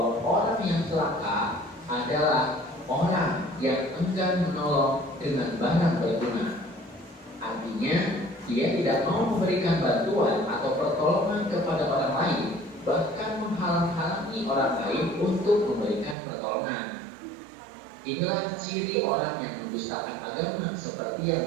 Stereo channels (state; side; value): drops out; left; at 16.2 s